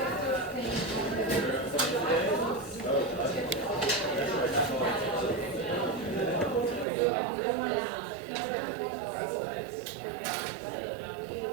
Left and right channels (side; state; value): left; drops out; at 6.9 s